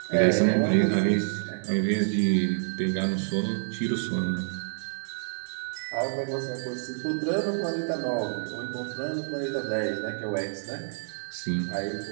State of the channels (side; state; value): left; silent; digital silence